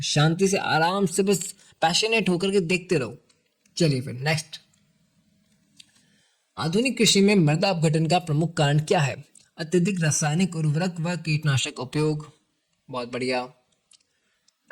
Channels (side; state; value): both; identical; correlation 1.00